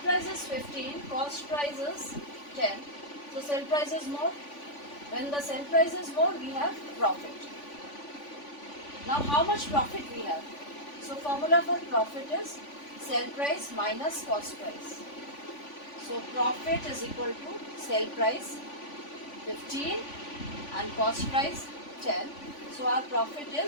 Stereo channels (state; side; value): late; right; 3.5 ms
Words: is 15, cost price is 10. So sale price is more. When the sale price is more, we have profit. Now how much profit we have? So formula for profit is sale price minus cost price. So profit is equal to sale price 15 and cost price 10. So our profit